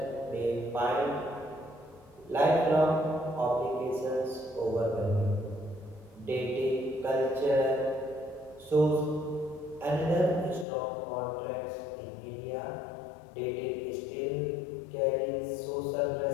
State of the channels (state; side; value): drops out; right; at 10.7 s